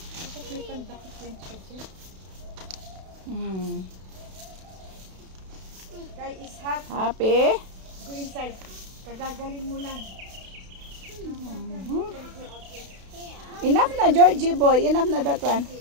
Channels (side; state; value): left; late; 32 ms